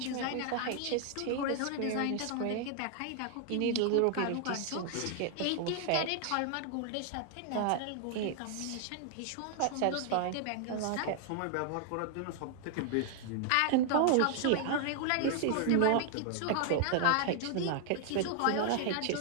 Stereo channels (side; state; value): both; different; correlation 0.00